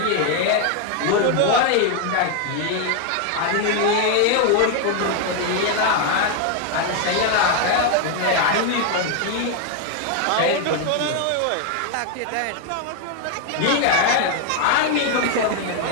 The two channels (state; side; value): different; both; correlation 0.01